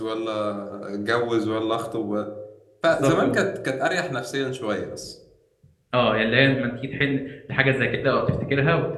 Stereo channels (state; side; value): identical; both; correlation 1.00